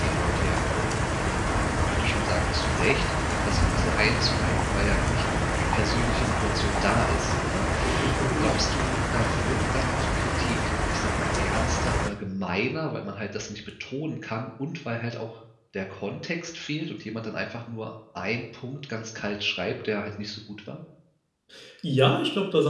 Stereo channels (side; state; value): both; identical; correlation 1.00